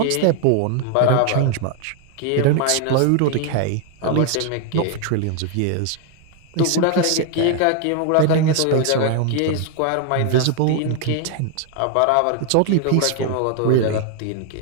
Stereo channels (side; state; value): both; different; correlation 0.00